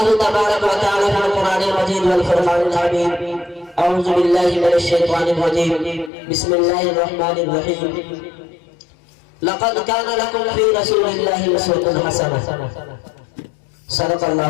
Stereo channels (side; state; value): right; drops out; at 6.1 s